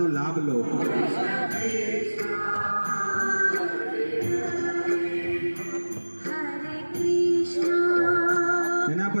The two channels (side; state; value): both; inverted; correlation -1.00